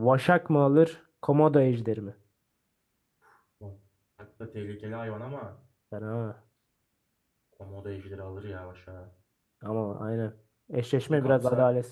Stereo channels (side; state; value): both; identical; correlation 1.00